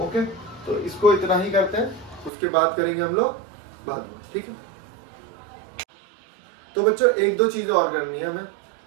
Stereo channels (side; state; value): left; drops out; at 2.3 s